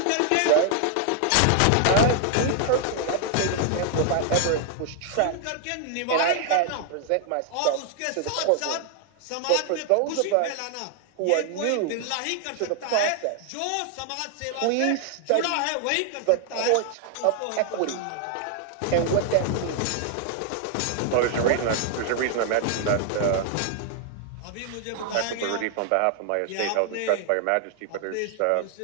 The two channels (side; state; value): both; different; correlation 0.00